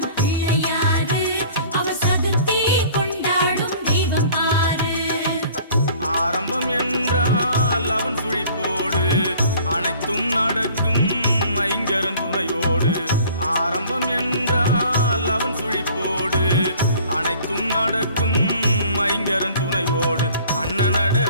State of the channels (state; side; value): inverted; both; correlation -0.51